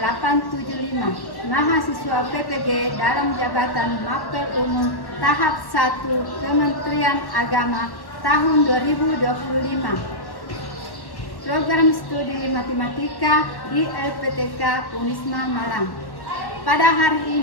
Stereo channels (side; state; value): right; late; 1.1 ms